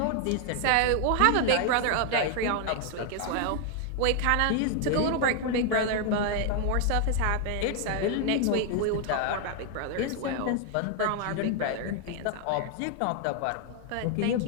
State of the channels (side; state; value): both; different; correlation 0.00